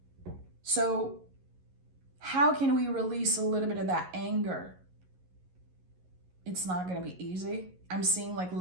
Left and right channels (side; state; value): left; late; 11 ms